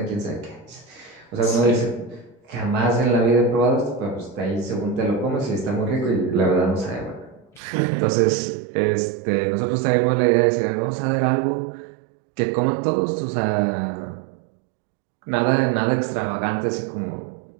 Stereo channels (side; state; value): left; drops out; at 7.6 s